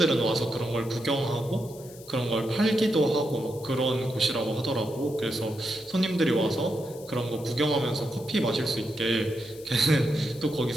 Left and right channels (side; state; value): left; noise; hiss, 20 dB below the sound